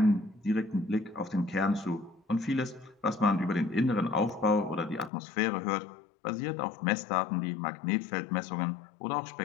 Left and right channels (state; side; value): drops out; right; at 5.1 s